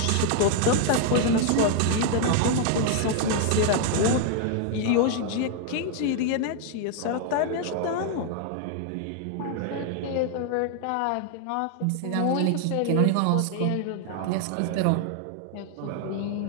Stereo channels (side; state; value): both; different; correlation 0.00